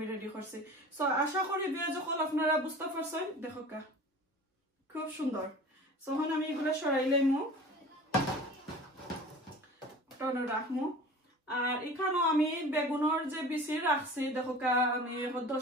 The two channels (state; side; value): normal; both; correlation 0.40